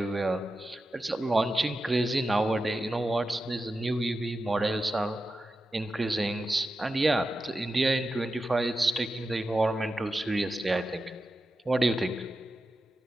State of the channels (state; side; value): normal; both; correlation 0.91